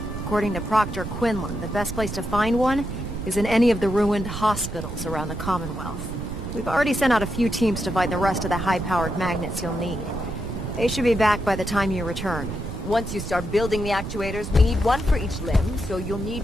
According to Proctor Quinlan, the best place to find one is in any of the ruined hospitals around the Commonwealth. We've already sent out a few teams to find the rest of the high-powered magnets you'll need. They should be back by the time you return. Once you start building the actuators, we need one for each limb, so you'll need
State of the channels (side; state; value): right; noise; rumble, 7 dB below the sound